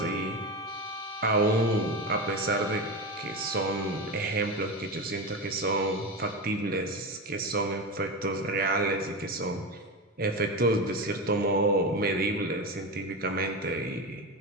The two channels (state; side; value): normal; both; correlation 0.20